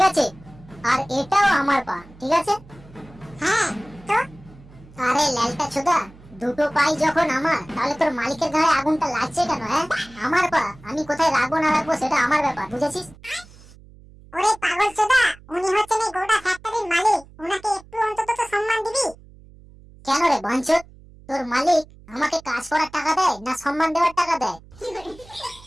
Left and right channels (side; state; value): right; noise; hum, 23 dB below the sound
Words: আছে? আর এটাও আমার পা, ঠিক আছে? হ্যাঁ তো আরে ল্যালটা ছোদা, দুটো পাই যখন আমার, তাহলে তোর মালিকের গায়ে আগুনটা লাগছে কেন? হ্যাঁ, আমার পা, আমি কোথায় রাখবো না রাখবো সেটা আমার ব্যাপার, বুঝেছিস? ওরে পাগলচোদা, উনি হচ্ছেন এই গোটা ফ্যাক্টরির মালিক, উনাকে একটু অন্তত তো সম্মান দিবি। কেন রে বাঞ্চোত, তোর মালিক আমাকে কাজ করার টাকা দেয় না সম্মান দেওয়ার টাকা দেয়?